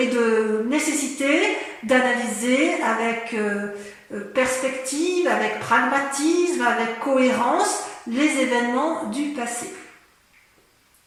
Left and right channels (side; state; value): both; identical; correlation 1.00